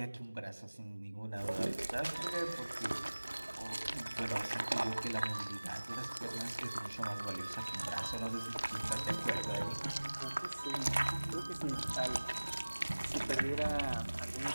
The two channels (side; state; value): both; inverted; correlation -1.00